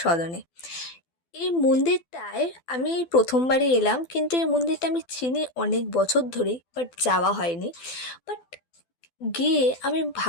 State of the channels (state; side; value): late; right; 12 ms